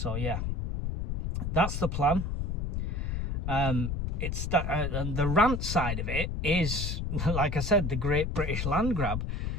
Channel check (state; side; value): noise; left; rumble, 1 dB below the sound